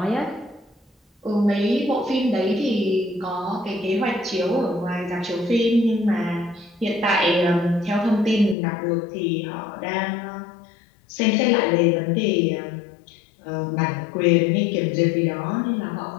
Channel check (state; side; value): drops out; right; at 8.6 s